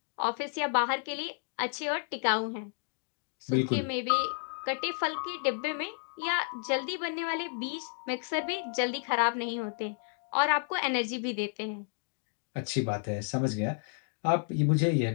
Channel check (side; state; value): right; silent; 57 dB below the other